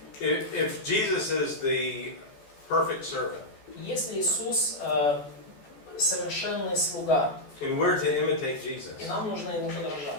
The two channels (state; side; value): late; right; 14 ms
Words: If Jesus is the perfect servant, Если Иисус совершенный слуга, and we're to imitate Jesus, и нам нужно ему